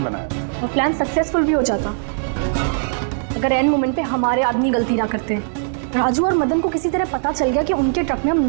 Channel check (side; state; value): left; silent; 56 dB below the other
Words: बनाया और प्लान सक्सेसफुल भी हो जाता अगर एंड मोमेंट पे हमारे आदमी गलती ना करते। राजू और मदन को किसी तरह पता चल गया कि उनके ट्रक में हम